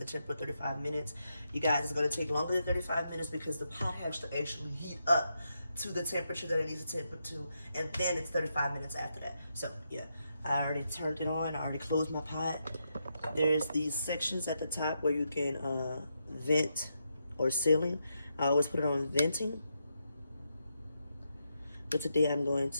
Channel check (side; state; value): both; inverted; correlation -0.82